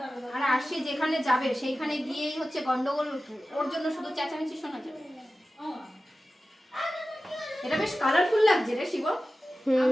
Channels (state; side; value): normal; both; correlation 0.95